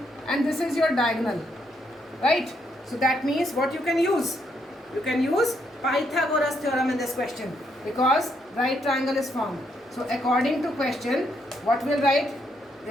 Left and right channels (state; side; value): normal; both; correlation 0.75